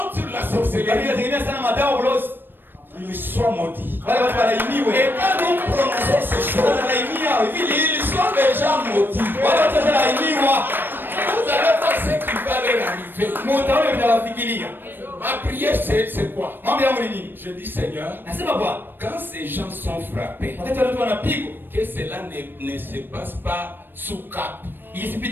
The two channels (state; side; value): late; left; 0.095 ms